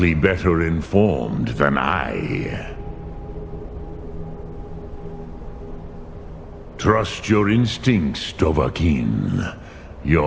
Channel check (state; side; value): identical; both; correlation 1.00